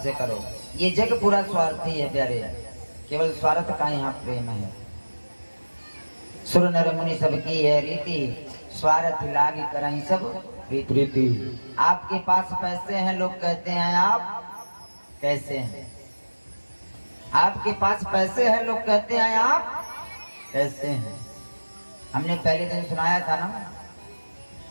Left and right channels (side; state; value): both; inverted; correlation -1.00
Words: से करो। ये जग पूरा स्वार्थी है प्यारे, केवल स्वार्थ का यहाँ प्रेम है। सुर नर मुनि सबकी है रीति, स्वार्थ लागी करहीं सब प्रीति। आपके पास पैसे हैं, लोग कहते हैं आप कैसे हैं। आपके पास पैसे हैं, लोग कहते हैं आप कैसे हैं। हमने पहले दिन सुनाया था ना